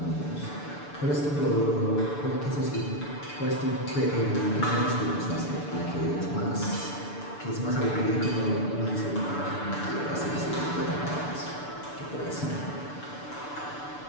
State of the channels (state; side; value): late; right; 6.9 ms